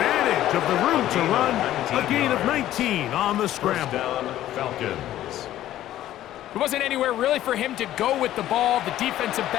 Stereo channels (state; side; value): quieter; right; 13.3 dB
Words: of the room to run. A gain of 19 on the scramble. First down, Falcons. There wasn't anywhere really for him to go with the ball. The defensive